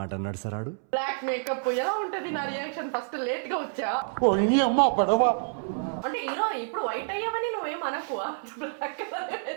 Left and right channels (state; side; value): silent; left; 59 dB below the other